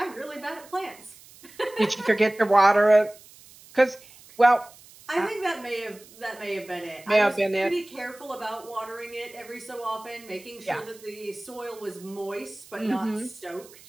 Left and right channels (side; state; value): right; noise; hiss, 22 dB below the sound